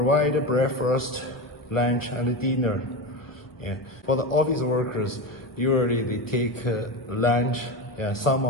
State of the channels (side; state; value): right; late; 1.2 ms